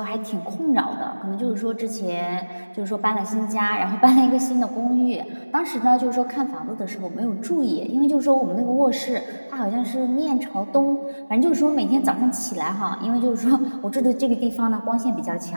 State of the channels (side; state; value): both; inverted; correlation -1.00